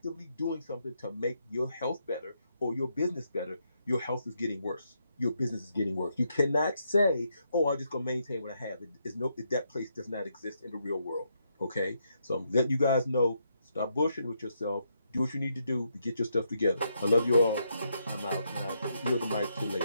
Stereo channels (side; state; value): both; inverted; correlation -0.78